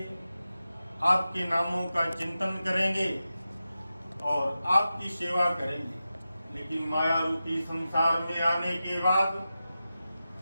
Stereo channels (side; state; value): both; inverted; correlation -0.92